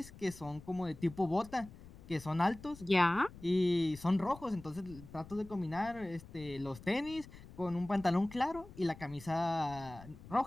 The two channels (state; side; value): noise; left; rumble, 18 dB below the sound